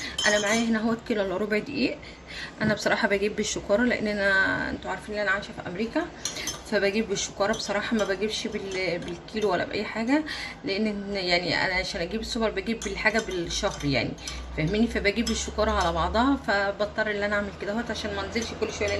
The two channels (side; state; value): both; identical; correlation 1.00